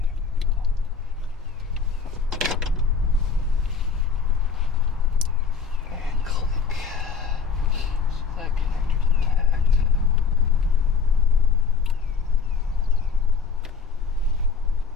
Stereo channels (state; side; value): quieter; right; 5.4 dB